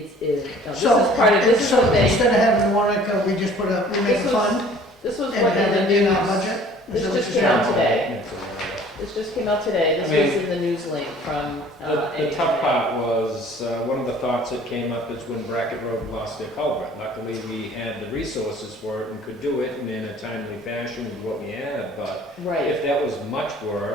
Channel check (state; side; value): normal; both; correlation 0.52